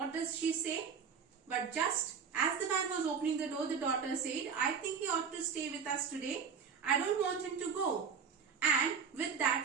does she say? But just as the man was opening the door, the daughter said, "I think he ought to stay with us today. I don't want him to go." And with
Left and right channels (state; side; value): quieter; left; 6.4 dB